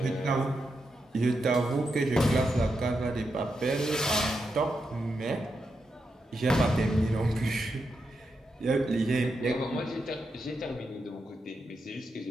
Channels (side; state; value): both; normal; correlation 0.85